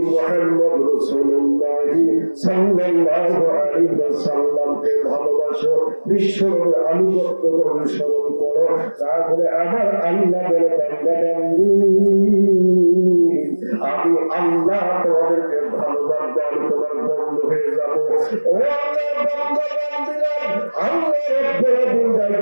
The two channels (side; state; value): both; inverted; correlation -1.00